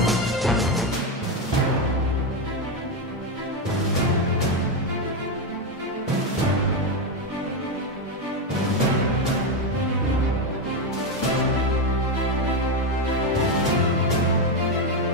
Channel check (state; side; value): normal; both; correlation 0.09